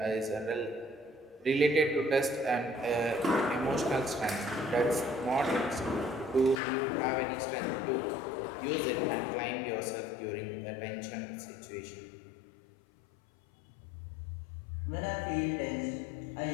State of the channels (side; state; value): right; drops out; at 6.6 s